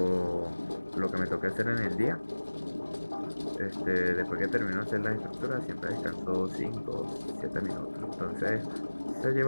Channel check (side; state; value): both; inverted; correlation -1.00